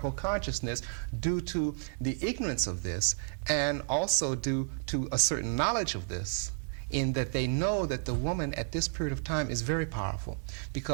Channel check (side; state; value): left; silent; digital silence